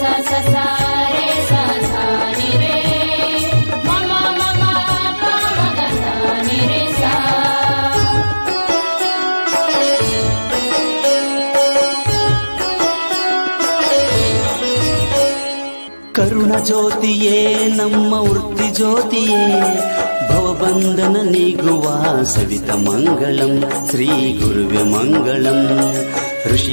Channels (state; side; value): inverted; both; correlation -1.00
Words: ಕರುಣ ಜ್ಯೋತಿಯೇ ನಮ್ಮ ವೃತ್ತಿ ಜ್ಯೋತಿಯೇ ಭವಬಂಧನ ನೀಗುವ ಸವಿತ ಮಂಗಳಂ ಶ್ರೀ ಗುರುವೆ ಮಂಗಳಂ